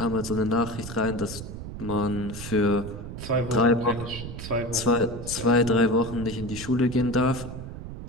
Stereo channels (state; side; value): noise; right; rumble, 9 dB below the sound